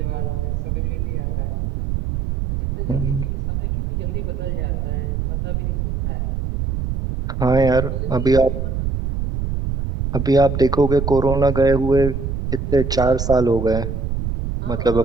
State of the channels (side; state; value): right; noise; rumble, 2 dB below the sound